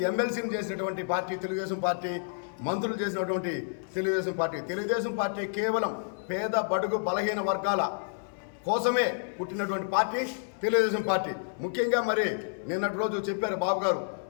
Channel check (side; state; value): right; silent; 58 dB below the other